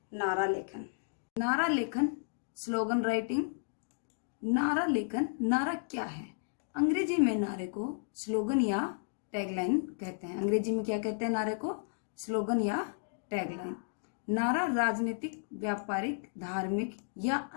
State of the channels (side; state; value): right; silent; digital silence